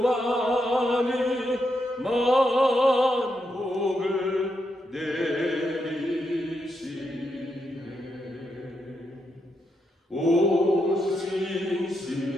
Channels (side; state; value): both; normal; correlation 0.82